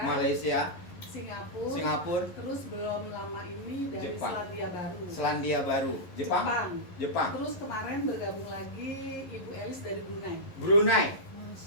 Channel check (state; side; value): late; right; 11 ms